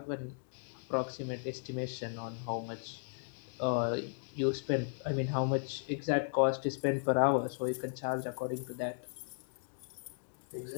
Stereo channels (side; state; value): right; silent; digital silence